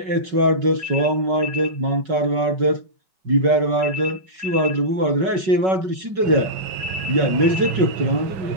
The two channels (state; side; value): late; left; 5.3 ms